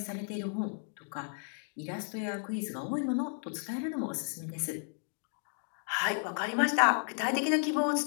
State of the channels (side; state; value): right; silent; 55 dB below the other